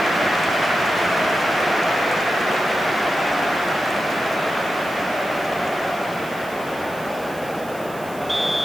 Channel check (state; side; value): noise; right; hiss, 19 dB below the sound